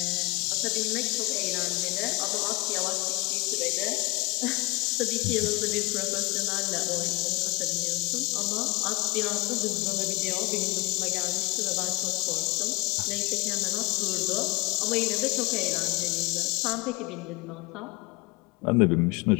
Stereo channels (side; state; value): right; quieter; 24.9 dB